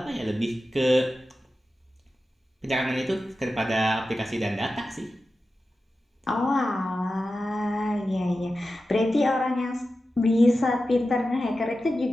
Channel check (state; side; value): normal; both; correlation 0.92